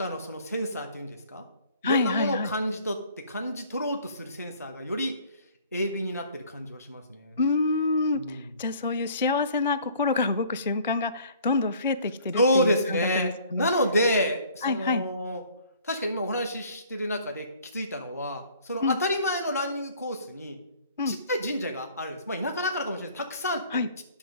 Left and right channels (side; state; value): both; inverted; correlation -0.54